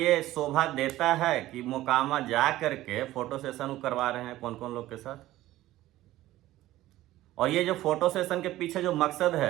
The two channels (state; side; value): quieter; left; 15.6 dB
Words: शोभा देता है कि मोकामा जा करके फोटो सेशन करवा रहे हैं कौन कौन लोग के साथ? और ये जो फोटो सेशन के पीछे जो मकसद